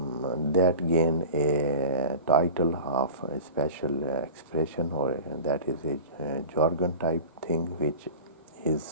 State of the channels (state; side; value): inverted; both; correlation -0.34